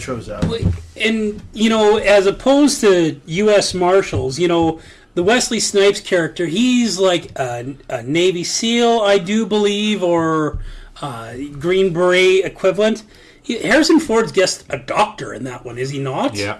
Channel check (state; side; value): identical; both; correlation 1.00